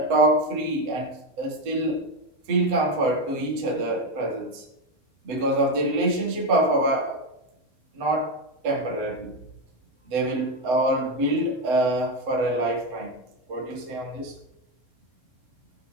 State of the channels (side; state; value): left; late; 7.9 ms